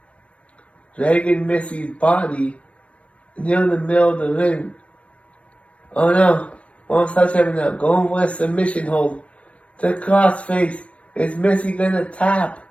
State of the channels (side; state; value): right; late; 0.062 ms